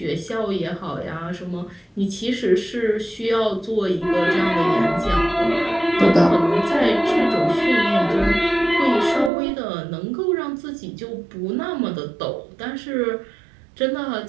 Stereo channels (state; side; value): drops out; left; at 9.3 s